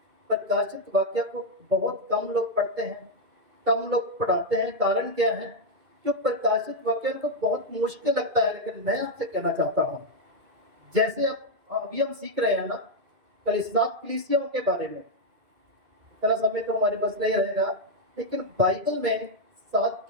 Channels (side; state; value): left; late; 2.3 ms